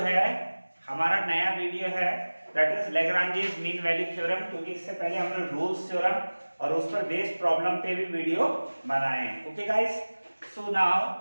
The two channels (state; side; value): inverted; both; correlation -1.00